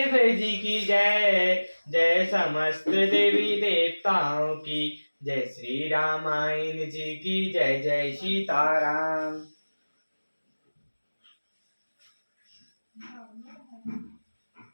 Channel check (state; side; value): inverted; both; correlation -1.00